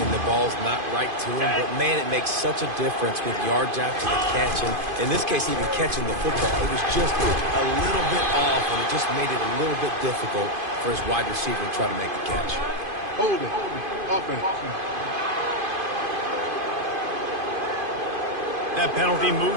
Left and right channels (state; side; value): late; left; 2.5 ms